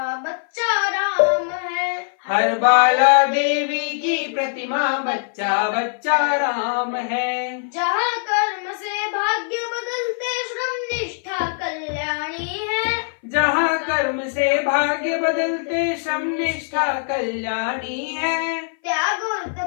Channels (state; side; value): silent; right; 58 dB below the other